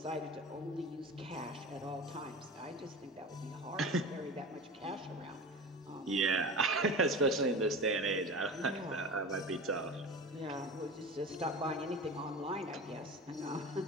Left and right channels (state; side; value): normal; both; correlation 0.31